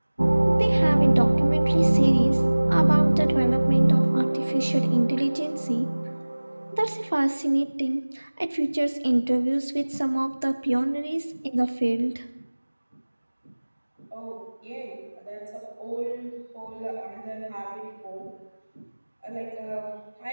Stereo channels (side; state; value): both; inverted; correlation -1.00